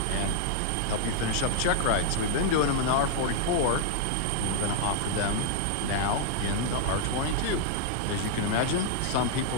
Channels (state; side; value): different; both; correlation -0.01